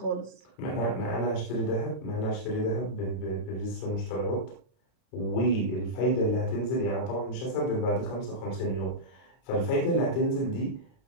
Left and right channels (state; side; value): late; right; 32 ms